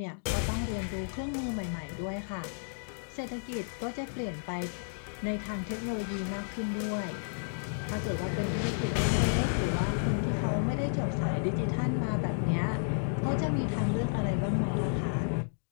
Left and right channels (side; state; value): right; silent; digital silence